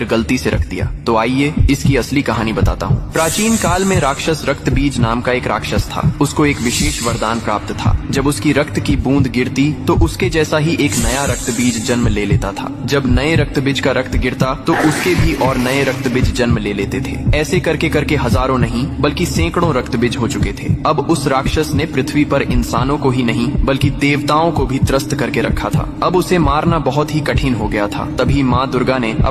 गलती से रख दिया? तो आइए इसकी असली कहानी बताता हूँ। प्राचीन काल में राक्षस रक्तबीज नाम का एक राक्षस था। उसको एक विशेष वरदान प्राप्त था। जब उसकी रक्त की बूंद गिरती तो उसके जैसा ही एक नया रक्तबीज जन्म ले लेता था। जब नए रक्तबीज का रक्त गिरता तो उसके भी और नए रक्तबीज जन्म ले लेते थे। ऐसे करके करके हजारों नहीं बल्कि सैकड़ों रक्तबीज हो चुके थे। अब उस राक्षस ने पृथ्वी पर इंसानों को ही नहीं बल्कि देवताओं को भी त्रस्त करके रखा था। अब उसे मारना बहुत ही कठिन हो गया था। तभी माँ दुर्गा ने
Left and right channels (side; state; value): both; identical; correlation 1.00